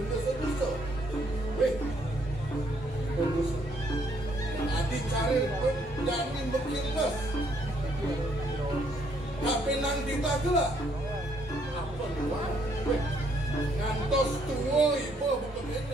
sedusa weh sedusa adi cari jadi berkilas tapi nanti tak gelah apa luar weh ngantos tua ibu bukan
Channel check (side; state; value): both; normal; correlation 0.69